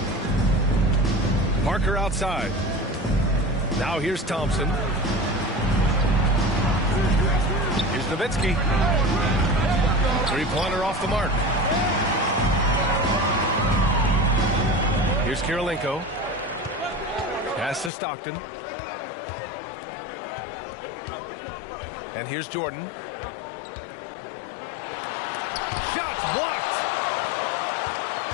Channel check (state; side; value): drops out; right; at 17.9 s